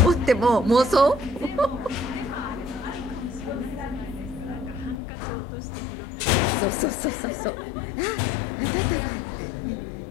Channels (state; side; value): drops out; right; at 5.0 s